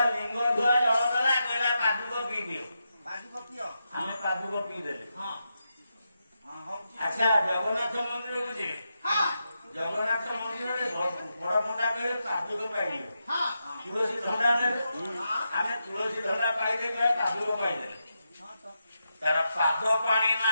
ଲିଙ୍ଗ ଧୁଆ ଜଳ ଦେଲା କହିଲା ପାଦୁକ ପିଇ ଦିଅ। ପାଦୁକ ପିଅ। ଆମେ ପାଦୁକ ପିଇଦେଲେ। ହଁ ଆଚ୍ଛା ଜଗନ୍ନାଥ ମନ୍ଦିରକୁ ଯିବେ। ଜଗନ୍ନାଥ ମନ୍ଦିରରେ ବଡ ପଣ୍ଡା କହିବେ ପାଦୁକ ପାଇଯିବେ। ତୁଳସୀ ଧଣ୍ଡା ନେବେ। ଆମେ ତୁଳସୀ ଧଣ୍ଡା ପାଇଦେଲେ ପାଦୁକ ପାଇଦେଲେ। ତାର ପାଦ ପାଣି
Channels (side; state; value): both; inverted; correlation -0.86